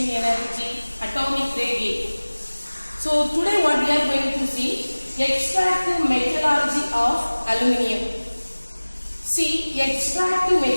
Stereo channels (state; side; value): inverted; both; correlation -1.00